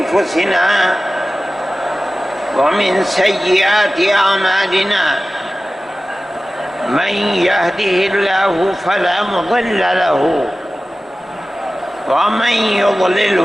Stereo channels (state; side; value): normal; both; correlation 0.96